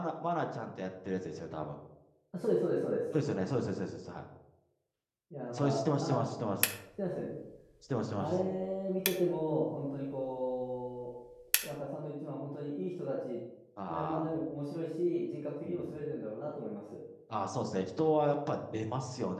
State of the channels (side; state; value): both; identical; correlation 1.00